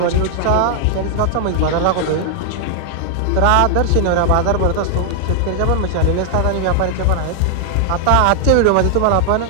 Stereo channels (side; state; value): both; different; correlation 0.00